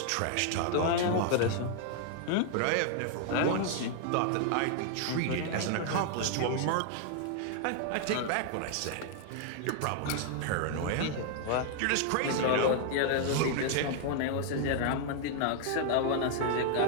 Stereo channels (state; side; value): different; both; correlation 0.00